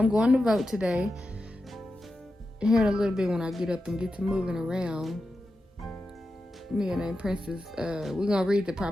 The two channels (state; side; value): normal; both; correlation 0.90